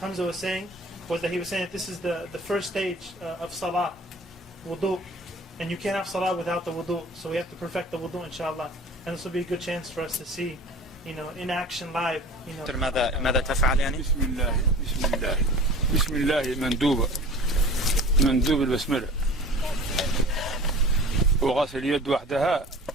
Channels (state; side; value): normal; both; correlation 0.42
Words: was saying, he was saying that this is the first stage of salah, wudu, and you can't have salah without the wudu, so we have to perfect the wudu, inshallah. And this will be a good chance for us to see, in action live. ماذا تفعل يعني؟ بسم الله مندوب البسملة، وغسل اليد وحدها